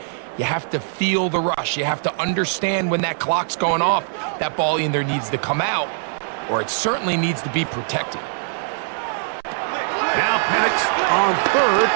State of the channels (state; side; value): silent; left; digital silence